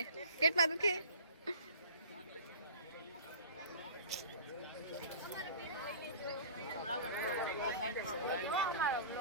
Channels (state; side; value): inverted; both; correlation -0.41